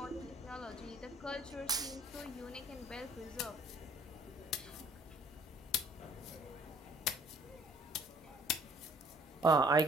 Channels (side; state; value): both; normal; correlation 0.58